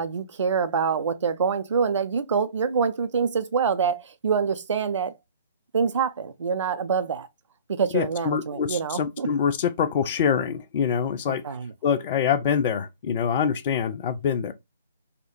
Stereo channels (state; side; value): inverted; both; correlation -0.39